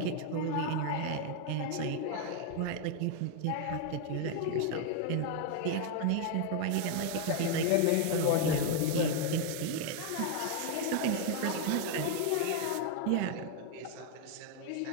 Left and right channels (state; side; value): different; both; correlation 0.01